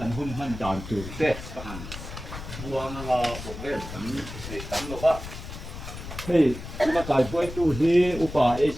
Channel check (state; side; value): noise; left; rumble, 10 dB below the sound